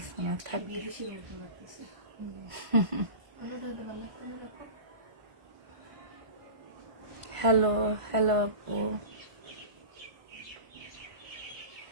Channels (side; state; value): left; late; 1.5 ms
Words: না, থাক। বিদেশির মতো লাগতেছে। অন্যটা হইলে ভালো লাগতো না এরকম। হ্যালো হ্যালো আপু,